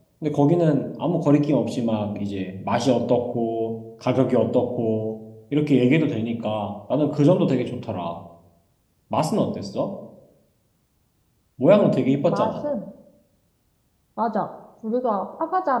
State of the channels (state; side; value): identical; both; correlation 1.00